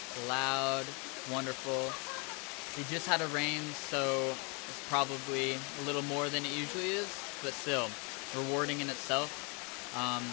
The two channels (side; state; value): right; quieter; 33.0 dB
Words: loud, wonderful. We just had a rain, so it's probably a little more than it usually is, but still rewarding in itself.